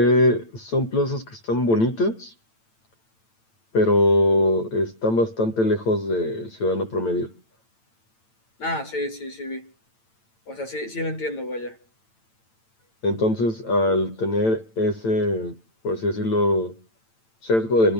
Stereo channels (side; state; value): right; late; 8.9 ms